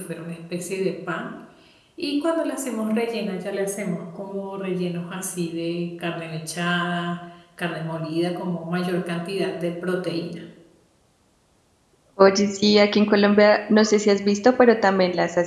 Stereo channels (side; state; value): both; identical; correlation 1.00